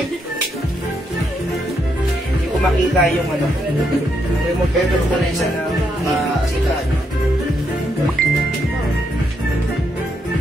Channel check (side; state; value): both; normal; correlation 0.78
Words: Hindi ko makita yung ano. Kaya mo pwede ko na isa na sikat.